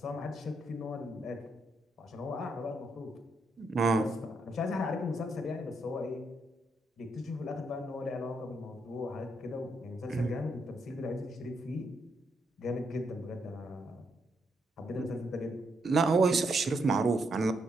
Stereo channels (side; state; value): both; normal; correlation 0.78